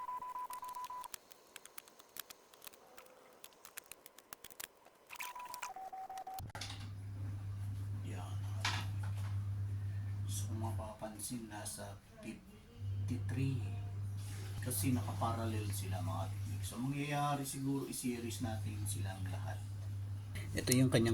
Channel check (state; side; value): identical; both; correlation 1.00